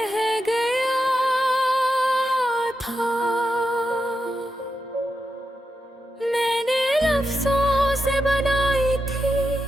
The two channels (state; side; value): normal; both; correlation 0.87